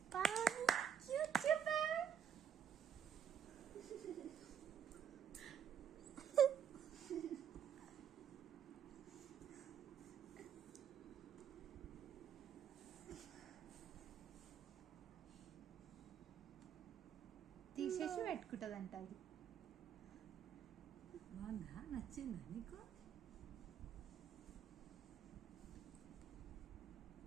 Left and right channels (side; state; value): left; quieter; 8.4 dB